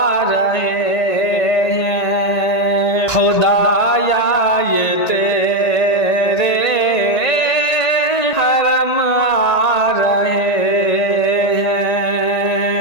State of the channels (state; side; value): late; right; 1.9 ms